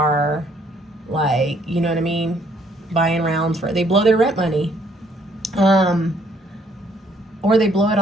like, you know what I mean, buying rounds for, they blow their rent money. Or they blow it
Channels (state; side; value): normal; both; correlation 0.65